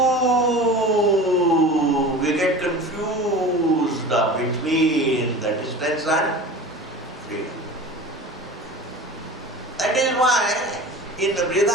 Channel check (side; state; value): both; normal; correlation 0.35